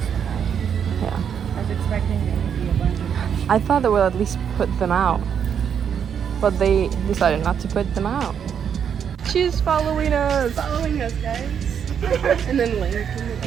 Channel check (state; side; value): quieter; left; 7.9 dB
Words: Yeah. I was expecting there to be a bunch of. I thought they would at least put them out. But they decided not to put them out. She's following us. Following us, guys. And then